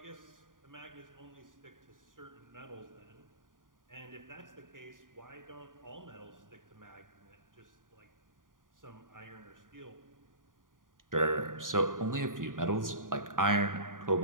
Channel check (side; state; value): left; late; 0.89 ms